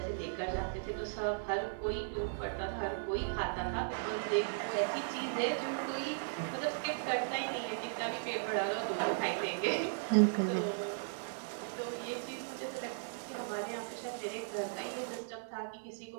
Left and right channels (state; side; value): silent; left; digital silence